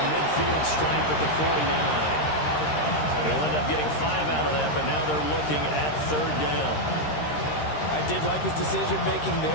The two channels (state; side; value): late; right; 13 ms